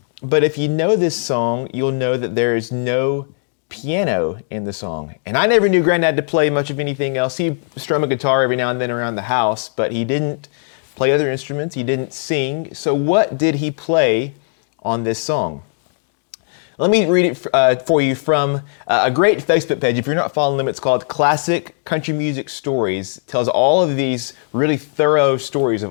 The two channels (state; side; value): silent; right; digital silence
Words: but if you know this song, you'll know that there is no piano in the song. And I never knew Grandad to play much of anything else. He strummed a guitar every now and then around the house, but he didn't play other instruments. He didn't sing. So what did he play on this song? Let me read it for you from a great Facebook page. If you're not following them, it's called Classic Country Music Stories. It tells all of these really thorough stories of